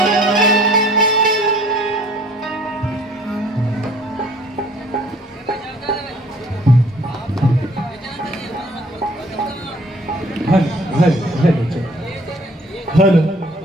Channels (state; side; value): normal; both; correlation 0.55